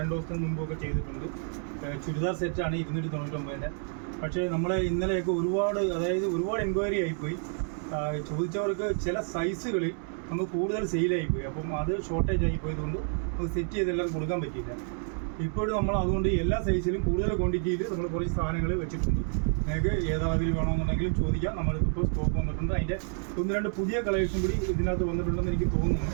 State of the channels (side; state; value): left; silent; 56 dB below the other